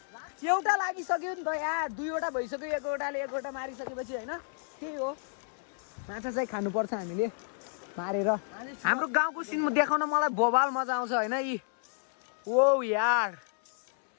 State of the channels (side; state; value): right; silent; 57 dB below the other